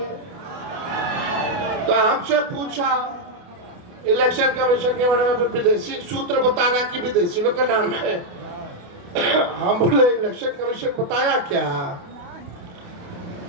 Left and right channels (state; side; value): late; left; 28 ms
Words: तो हमसे पूछा इलेक्शन कमीशन के बारे में, विदेशी सूत्र बता रहा कि विदेशी लोग का नाम है। हम बोले इलेक्शन कमीशन बताया क्या?